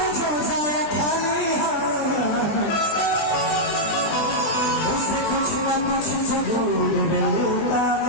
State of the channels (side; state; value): right; late; 20 ms